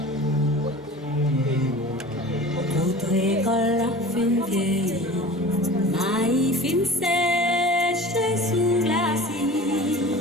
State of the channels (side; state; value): both; normal; correlation 0.39